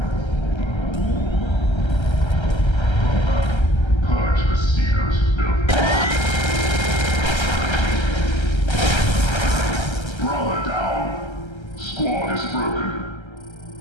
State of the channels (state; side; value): late; right; 1.3 ms